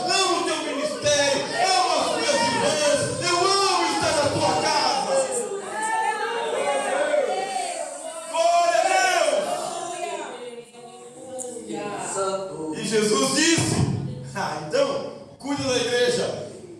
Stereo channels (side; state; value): both; identical; correlation 1.00